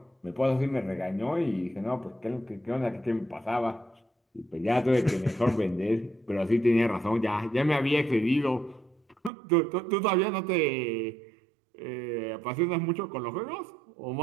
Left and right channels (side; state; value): left; drops out; at 9.3 s